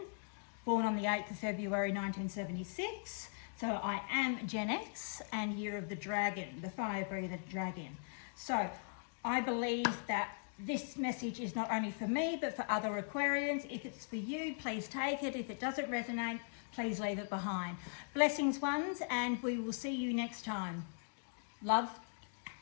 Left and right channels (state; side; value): silent; right; digital silence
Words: born on the 8th of February 1976, so I am Gen X and year of the dragon, the fire breather dragon. So I believe that this message is not only for me, but for other Aquarians. If it's for you, please take it. If it doesn't resonate, please leave it behind. Blessings, ones, and we will see you next time. Love,